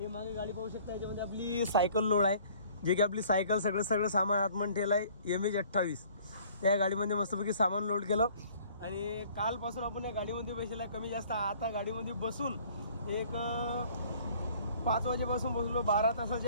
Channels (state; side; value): inverted; both; correlation -0.55